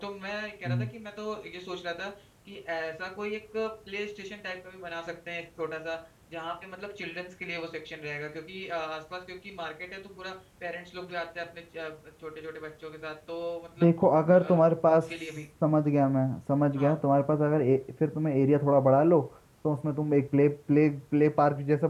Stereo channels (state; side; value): identical; both; correlation 1.00